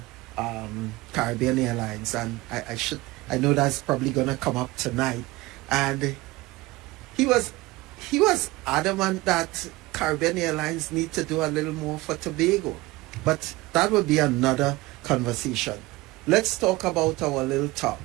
Caribbean Airlines, and I know that's probably gonna come up tonight. And he was adamant that Caribbean Airlines need to do a little more for Tobago. But that would be another conversation. Let's talk about our little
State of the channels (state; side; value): quieter; left; 20.5 dB